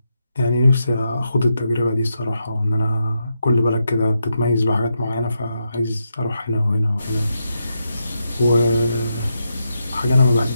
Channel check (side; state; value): both; inverted; correlation -0.84